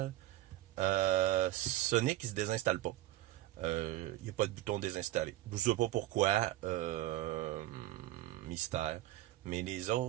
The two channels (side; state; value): left; quieter; 15.3 dB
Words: Sonic, il se désinstalle pas. Il n'y a pas de bouton désinstaller. Je ne sais pas pourquoi. Mystère. Mais les